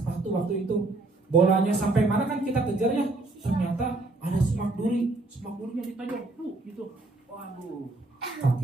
waktu itu. Bolanya sampai mana kan kita kejar ya, ternyata ada semak durinya ditajam gitu. Waduh,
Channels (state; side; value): quieter; left; 3.1 dB